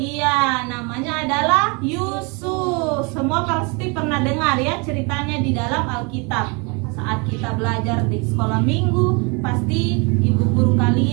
namanya adalah Yusuf. Semua pasti pernah dengar ya ceritanya di dalam Alkitab. Saat kita belajar di sekolah minggu, pasti ibu guru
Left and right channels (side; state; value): left; quieter; 30.9 dB